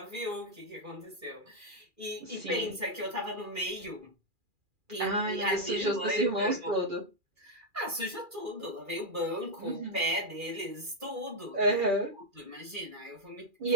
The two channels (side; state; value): left; late; 2.4 ms